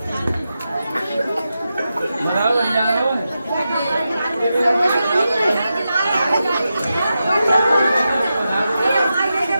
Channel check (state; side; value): inverted; both; correlation -0.89